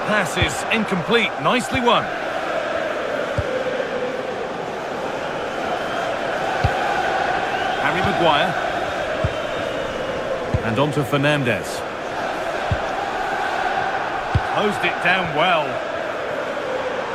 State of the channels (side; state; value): both; identical; correlation 1.00